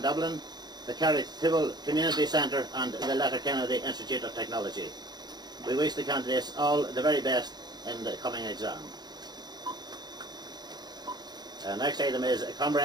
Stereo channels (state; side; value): late; left; 0.20 ms